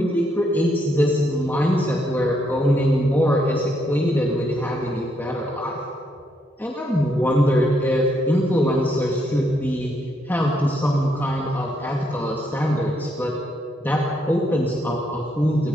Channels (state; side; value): normal; both; correlation 0.75